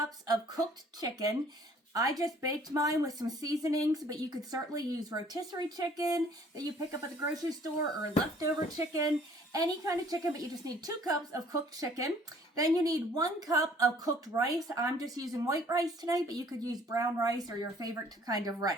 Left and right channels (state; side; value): normal; both; correlation 0.57